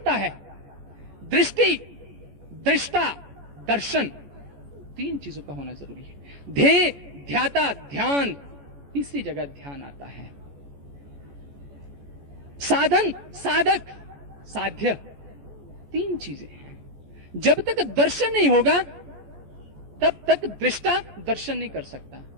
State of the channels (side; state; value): left; late; 14 ms